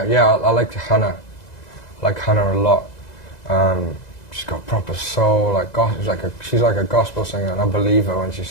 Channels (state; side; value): late; right; 2.0 ms